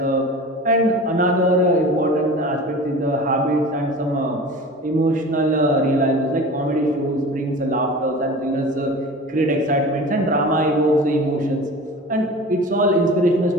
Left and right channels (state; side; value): normal; both; correlation 0.37